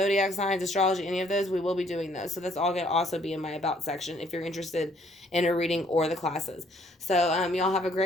signs, astrology, any of those, we will be doing those. So that's all going to also be in my about section if you're interested in a reading or the classes. So y'all have a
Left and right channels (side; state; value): both; normal; correlation 0.64